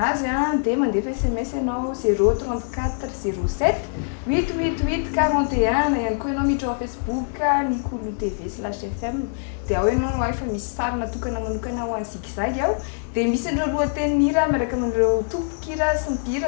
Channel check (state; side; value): silent; right; digital silence